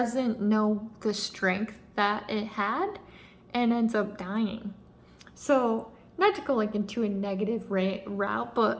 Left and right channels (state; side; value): identical; both; correlation 1.00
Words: know the strength that it had and ends up dying. So not to go like into a negative route,